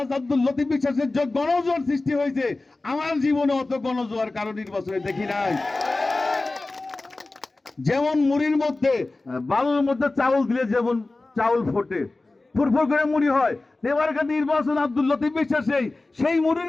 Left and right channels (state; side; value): quieter; right; 3.2 dB